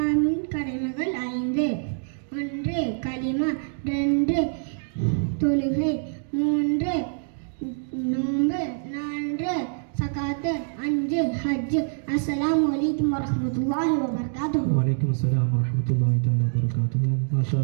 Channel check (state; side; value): silent; left; digital silence